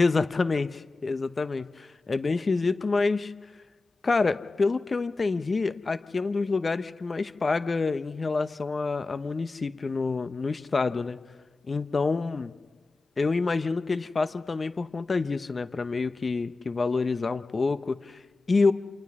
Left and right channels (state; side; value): quieter; right; 3.6 dB